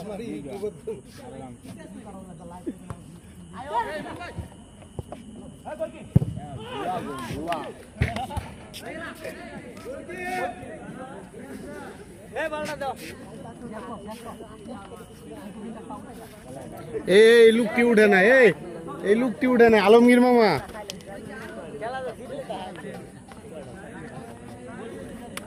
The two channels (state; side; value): identical; both; correlation 1.00